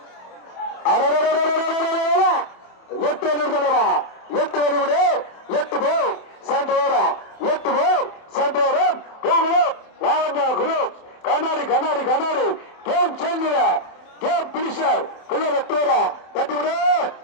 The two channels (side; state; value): right; late; 27 ms